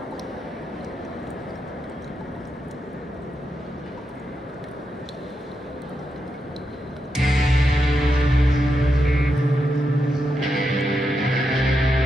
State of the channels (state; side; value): normal; both; correlation 0.85